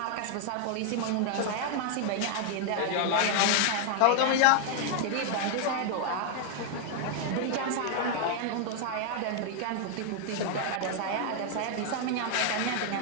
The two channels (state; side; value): different; both; correlation 0.00